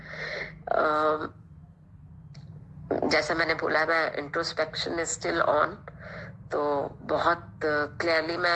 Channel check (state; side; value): identical; both; correlation 1.00